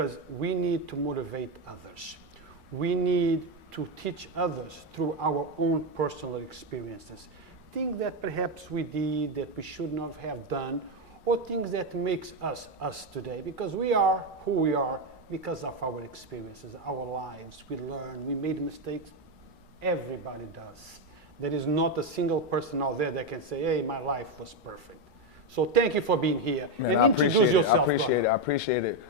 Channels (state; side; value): noise; right; rumble, 27 dB below the sound